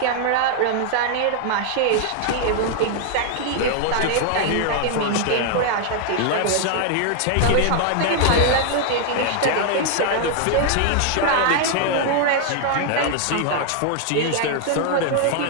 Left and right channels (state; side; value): different; both; correlation 0.00